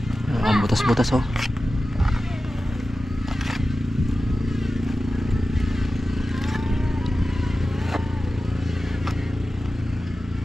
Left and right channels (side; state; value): both; normal; correlation 0.94